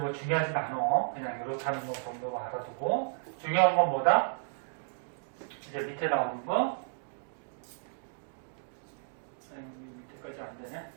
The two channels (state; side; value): silent; left; digital silence